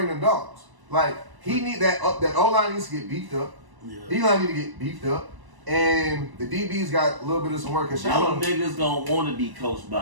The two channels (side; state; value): left; late; 1.0 ms